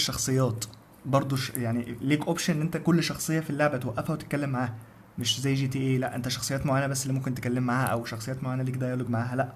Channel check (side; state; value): both; identical; correlation 1.00